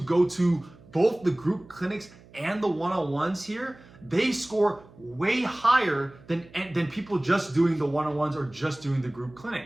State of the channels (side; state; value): right; noise; hum, 24 dB below the sound